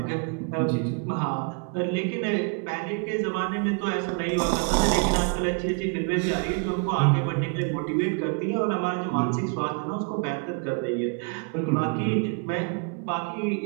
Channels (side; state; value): left; quieter; 35.8 dB